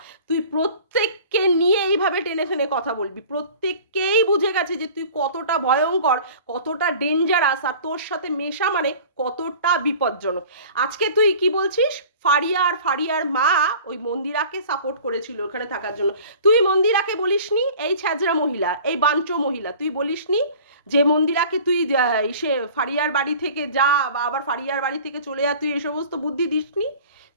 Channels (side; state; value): both; inverted; correlation -0.44